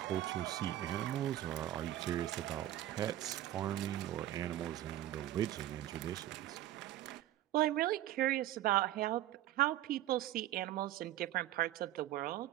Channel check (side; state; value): left; quieter; 13.7 dB